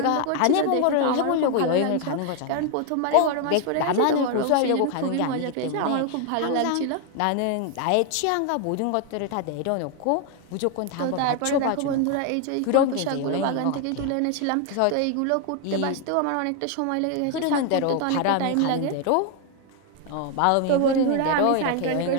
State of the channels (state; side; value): different; both; correlation 0.01